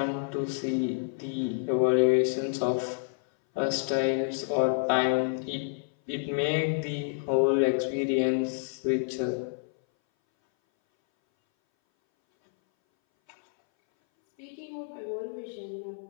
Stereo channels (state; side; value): silent; right; 59 dB below the other